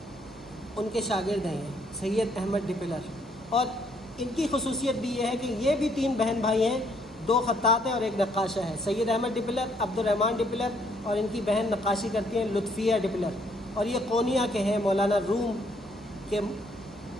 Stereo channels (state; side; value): normal; both; correlation 0.68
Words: ان کے شاگرد ہیں سید احمد ڈپلر. اور ان کی خصوصیت بھی یہ ہے کہ یہ بھی 3 بہن بھائی ہیں, 2 خطاط ہیں اور 1 نقاشہ ہے. سید احمد ڈپلر, عبد الرحمن ڈپلر, اور ان کی بہن نقاشی کرتی ہیں لطفیہ ڈپلر. اور یہ قونیہ کے ہیں, مولانا روم کے